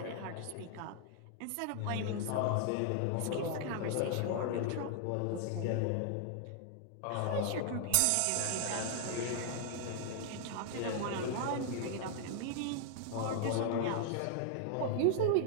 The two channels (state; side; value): different; both; correlation 0.00